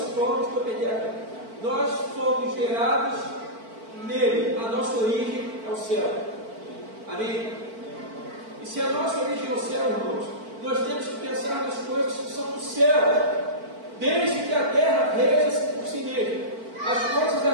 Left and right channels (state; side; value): late; left; 4.5 ms